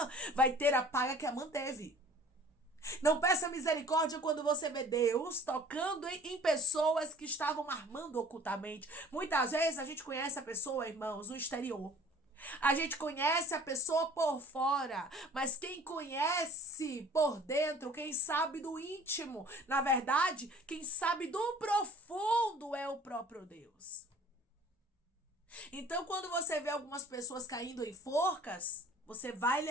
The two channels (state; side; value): normal; both; correlation 0.50